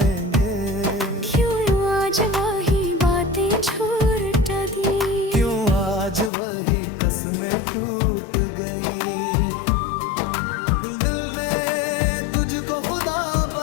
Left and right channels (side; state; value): right; drops out; at 6.3 s